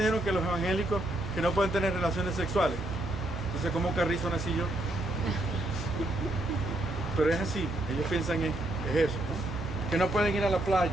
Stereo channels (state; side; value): noise; right; hum, 9 dB below the sound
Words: que los evangélicos que no pueden tener relaciones sexuales. Entonces, ¿cómo carrizo nací yo? Pero es así, ellos piensan es eso, ¿no? Que no pueden ir a la playa,